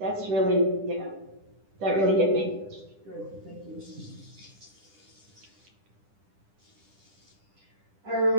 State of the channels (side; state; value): left; late; 10 ms